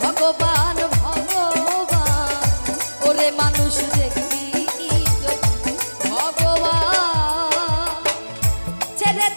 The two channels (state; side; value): inverted; both; correlation -1.00